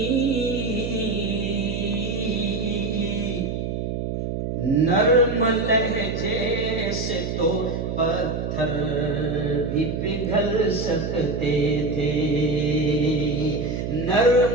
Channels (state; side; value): noise; right; hum, 3 dB below the sound